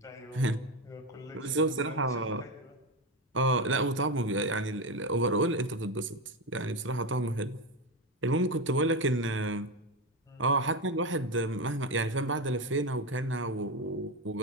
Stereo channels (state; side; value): normal; both; correlation 0.14